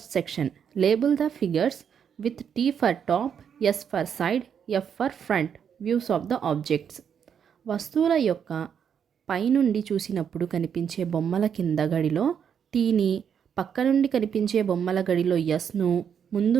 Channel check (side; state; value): left; quieter; 7.8 dB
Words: section label the figures with T for top, S for side, F for front views of the objects. వస్తువుల యొక్క పైనుండి చూసినప్పుడు కనిపించే బొమ్మల కింద గడిలో టీని, పక్క నుండి కనిపించే బొమ్మల గడిలో ఎస్ను, ముందు